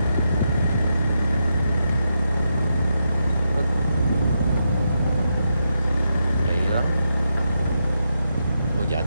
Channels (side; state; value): both; inverted; correlation -0.84